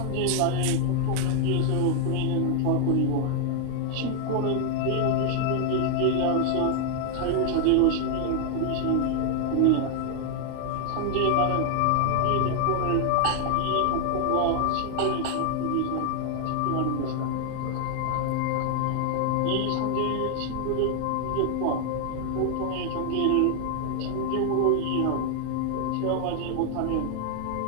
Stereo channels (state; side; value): different; both; correlation 0.00